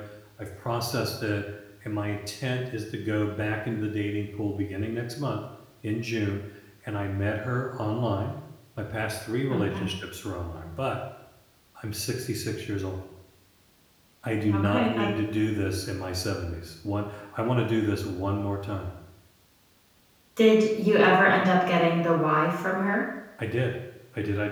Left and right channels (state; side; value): identical; both; correlation 1.00